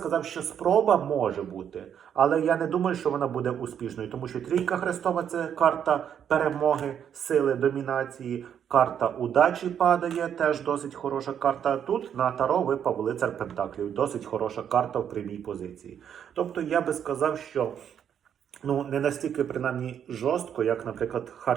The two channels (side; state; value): left; quieter; 8.8 dB